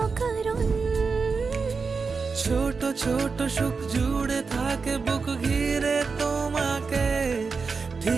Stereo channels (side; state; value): left; quieter; 4.8 dB